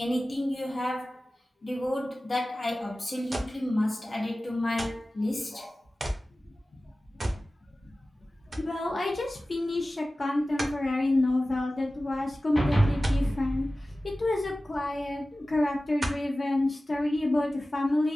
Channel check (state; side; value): normal; both; correlation 0.96